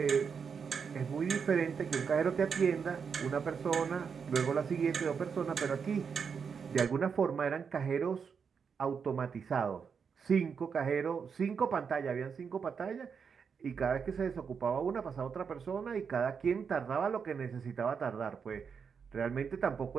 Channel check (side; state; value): left; quieter; 6.3 dB